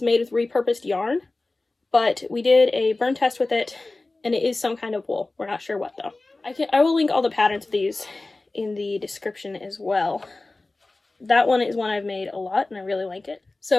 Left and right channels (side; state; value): right; quieter; 3.2 dB